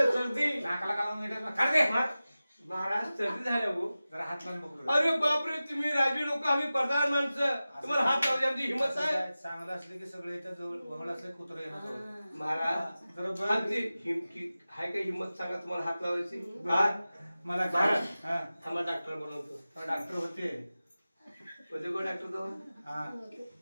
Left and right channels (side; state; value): both; inverted; correlation -0.96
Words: सर्दी नाकाला काढून घेतात काढ दे. महाराज सर्दी झाल्या हो जरा हात लावून बघू. अरे बापरे तुम्ही राजी लोक आम्ही प्रधान माणसं तुम्हाला हात लावली आमची हिंमत आहे चांगलं असलं की सगळे इथं जवळ वगळ असले कुत्र येणार महाराज जरा आमची हाय का हिंमत सांगा तुम्हाला हात लावायची मला काय हा थांबा डॉक्टर बनवतो डॉक्टर होते होते कोण डॉक्टर तो हा